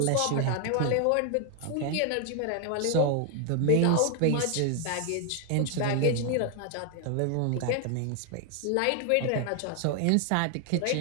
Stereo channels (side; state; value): both; different; correlation 0.00